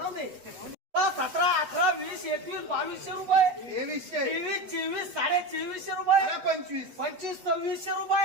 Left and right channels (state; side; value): late; left; 8.2 ms